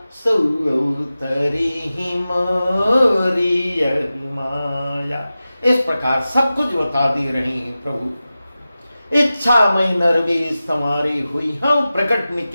सो तरी ही मोरी माया। इस प्रकार सब कुछ बता दे रहे हैं प्रभु। इच्छा मैं नरवेश संवारे हुई हम, प्रकट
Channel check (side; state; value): both; inverted; correlation -0.95